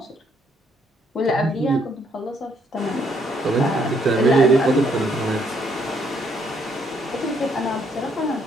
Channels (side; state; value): both; normal; correlation 0.70